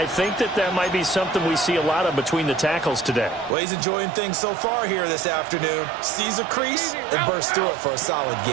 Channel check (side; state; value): left; drops out; at 3.6 s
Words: think that might be something we see a lot of between the tackles today. Well, he's enjoying things so far here this afternoon. Sees a crease and bursts through it for a solid